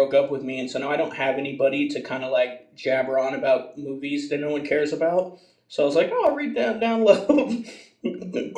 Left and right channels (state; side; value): identical; both; correlation 1.00